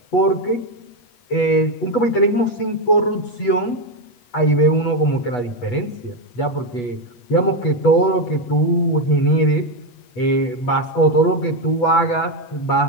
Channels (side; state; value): right; late; 8.2 ms